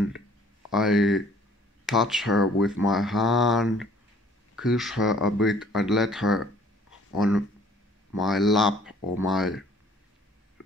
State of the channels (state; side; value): normal; both; correlation 0.56